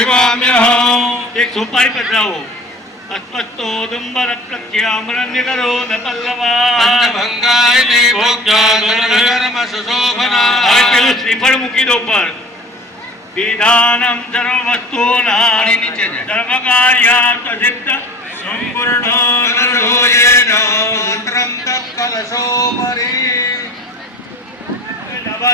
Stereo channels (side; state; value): both; normal; correlation 0.43